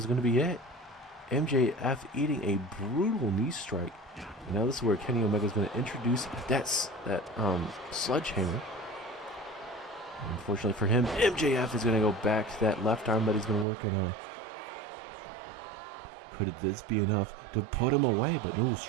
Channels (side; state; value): left; drops out; at 13.7 s